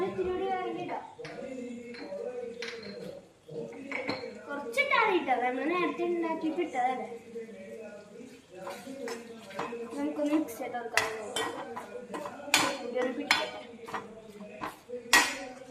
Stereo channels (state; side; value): identical; both; correlation 1.00